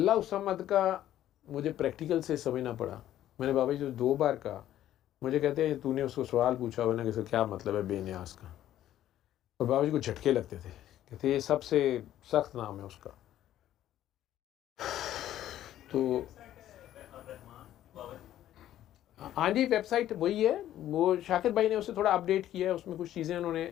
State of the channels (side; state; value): right; quieter; 12.4 dB